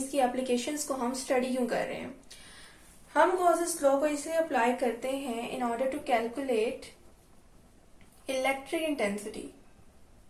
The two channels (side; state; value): both; identical; correlation 1.00